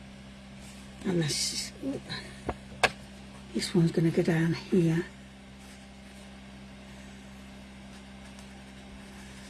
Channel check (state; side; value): identical; both; correlation 1.00